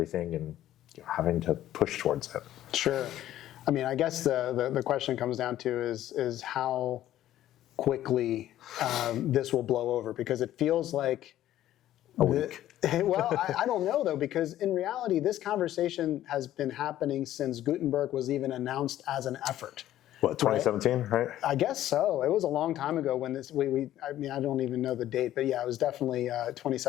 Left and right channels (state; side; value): quieter; right; 13.0 dB